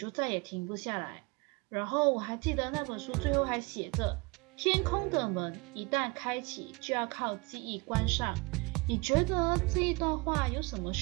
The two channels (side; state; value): left; quieter; 27.2 dB